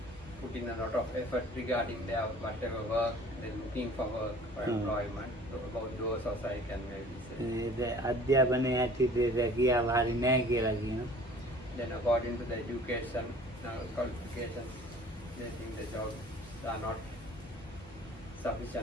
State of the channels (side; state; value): both; normal; correlation 0.49